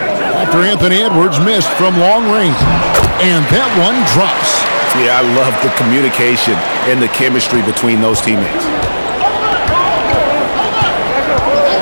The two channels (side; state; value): both; inverted; correlation -1.00